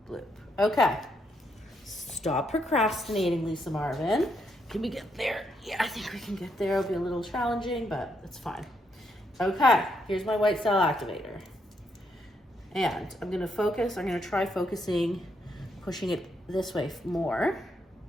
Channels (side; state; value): both; normal; correlation 0.77